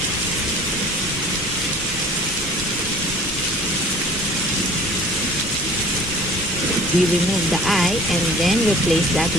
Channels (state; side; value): normal; both; correlation 0.47